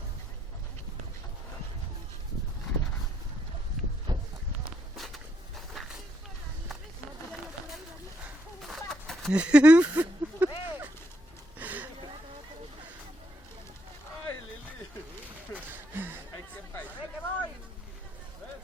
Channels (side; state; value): both; normal; correlation 0.75